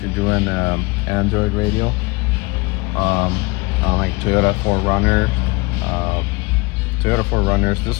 you're doing Android radio. On like Toyota 4Runner, Toyota 4Runners.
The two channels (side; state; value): right; quieter; 24.8 dB